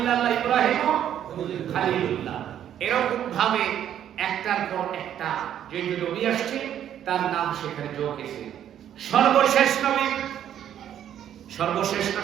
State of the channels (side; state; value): left; quieter; 10.3 dB